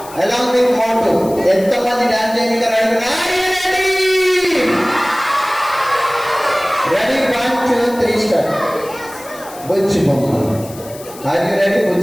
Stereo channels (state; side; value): noise; left; hiss, 18 dB below the sound